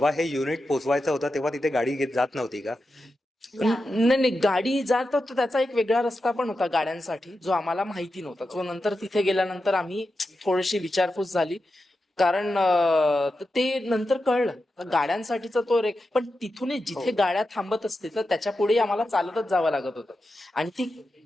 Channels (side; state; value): both; normal; correlation 0.90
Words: हे युनिट पोहोचवायचं होतं तेव्हा तिथे गाडी घेत जात नव्हती का? नाही गाडी जात होतो, त्याचा एक वेगळा रस्ता पण होता गाड्यांसाठी जो आम्हाला माहिती नव्हता. जो नंतर तिथे गेल्यानंतर आम्ही थोडीशी विचारपूस झाली, कारण ते नंतर कळलं गाड्यांसाठीचा तो पण तिथून जिथे गाड्या थांबत असते तर त्याच्या पुढे आम्हाला चालतच जावं लागत होतं. आणि ती